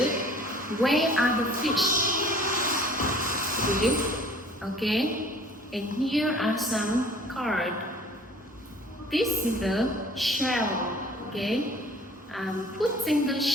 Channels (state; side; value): normal; both; correlation 0.50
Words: Where are the fish? Good. Okay. And here are some cards. This is the shell. Okay. I'm putting the